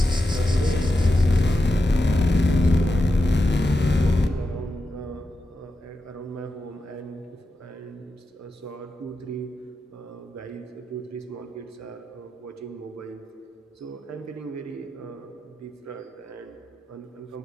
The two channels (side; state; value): both; normal; correlation 0.89